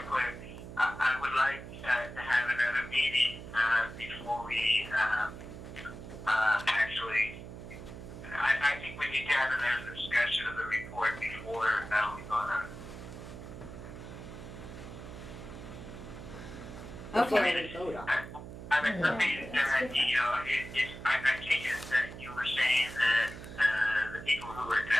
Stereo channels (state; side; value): noise; right; hum, 12 dB below the sound